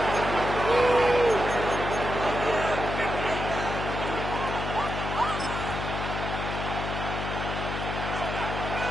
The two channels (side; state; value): left; noise; hum, 4 dB below the sound